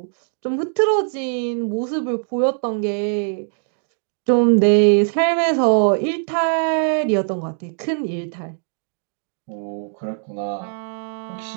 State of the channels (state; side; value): silent; left; digital silence